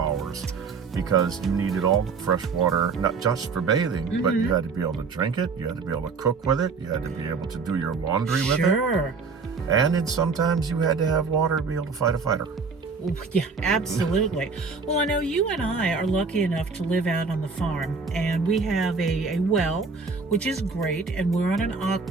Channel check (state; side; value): quieter; left; 4.8 dB